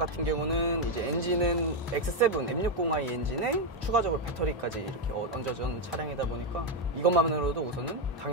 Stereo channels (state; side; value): normal; both; correlation 0.04